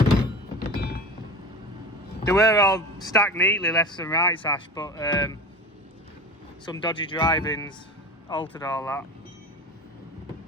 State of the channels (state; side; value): normal; both; correlation 0.31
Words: They were all stacked neatly left and right, Ash, but some dodgy drivings altered all that.